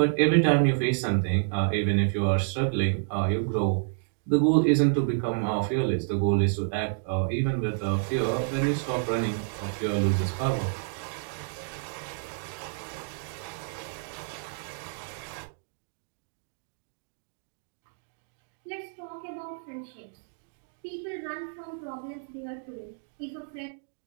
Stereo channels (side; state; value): left; silent; digital silence